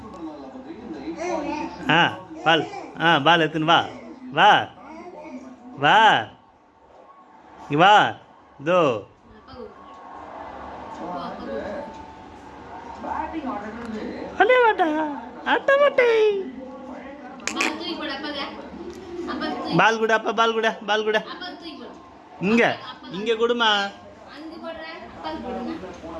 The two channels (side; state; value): both; identical; correlation 1.00